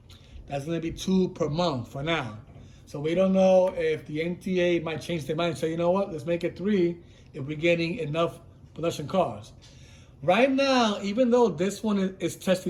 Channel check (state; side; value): identical; both; correlation 1.00